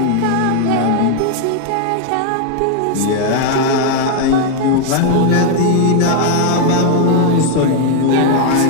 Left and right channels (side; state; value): both; different; correlation 0.00